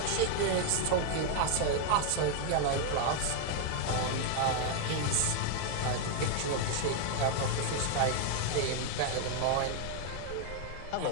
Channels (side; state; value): both; different; correlation 0.00